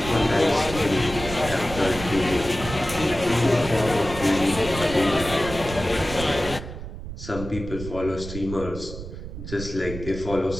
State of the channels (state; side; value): noise; right; rumble, 10 dB below the sound